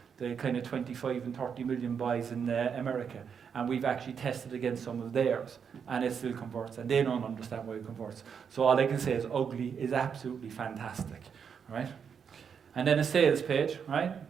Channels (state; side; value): quieter; left; 6.9 dB